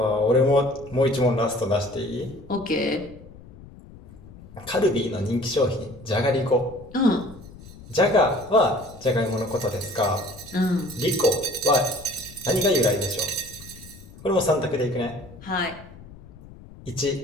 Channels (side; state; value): left; noise; rumble, 19 dB below the sound